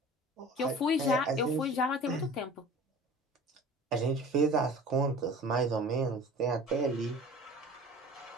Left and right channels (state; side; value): normal; both; correlation 0.42